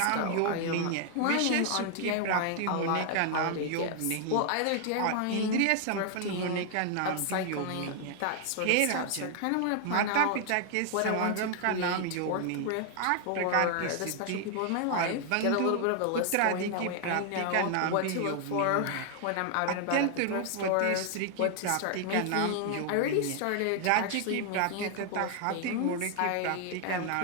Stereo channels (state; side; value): different; both; correlation 0.00